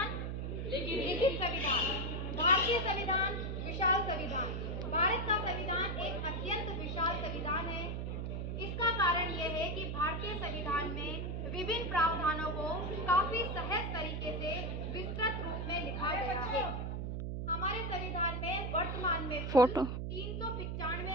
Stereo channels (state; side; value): noise; right; hum, 3 dB below the sound